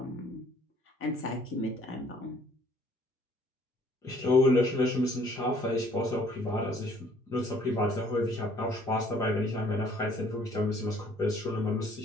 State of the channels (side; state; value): both; normal; correlation 0.60